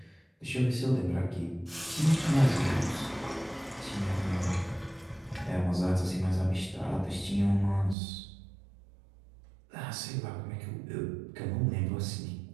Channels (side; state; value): left; drops out; at 8.0 s